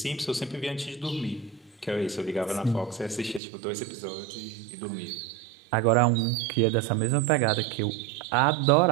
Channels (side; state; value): left; drops out; at 3.4 s